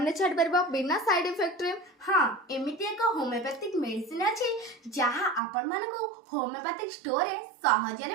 से छाड़ पार बिना साइड इफेक्ट रे। हाँ एमती एक होमियोपैथिक मेडिसिन अच्छी जहाँ आपण मानकु होमियोपैथिक स्टोर रे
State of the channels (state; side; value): drops out; left; at 5.4 s